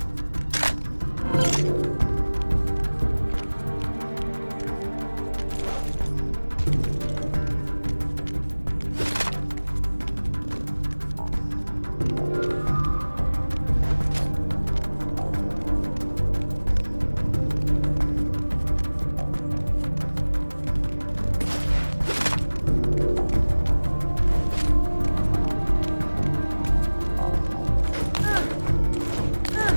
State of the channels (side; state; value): both; inverted; correlation -1.00